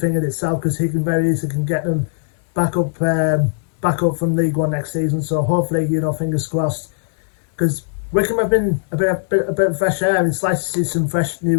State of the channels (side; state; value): right; silent; digital silence